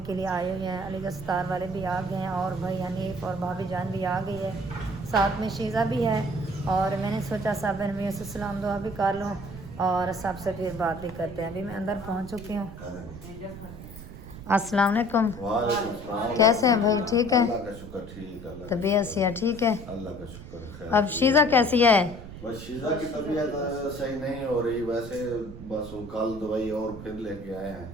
کے لیے آئے ہوئے ہیں، علی گڑھ ستار والے بھی آ گئے ہیں، اور بھائی حنیف اور بھابھی جان بھی آ گئی ہے، ساتھ میں شیزہ بھی ہے، اور میں نے سوچا صاحب بہن میں سے سلام دعا بھی کر لوں اور سب سے پھر بات بھی کرتے ہیں۔ ابھی میں اندر پہنچ چکی ہوں۔ السلام علیکم۔ وعلیکم السلام۔ کیسے ہیں بھائی؟ ٹھیک ہے؟ اللہ کا شکر، ٹھیک ہے۔ طبیعت سے ٹھیک ہے؟ اللہ کا شکر ہے۔ اب شیزہ کیسی ہے؟ بس شیزہ کی طبیعت صحیح نہیں ہو رہی، ویسے بس وہ کل دوائی اور پھر لے کے آئے ہیں۔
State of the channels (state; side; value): noise; right; rumble, 13 dB below the sound